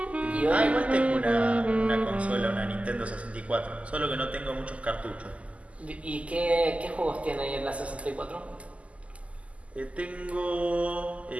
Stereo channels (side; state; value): left; late; 0.065 ms